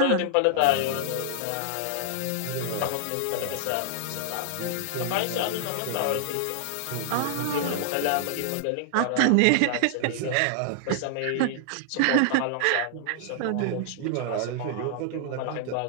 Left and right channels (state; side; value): different; both; correlation -0.01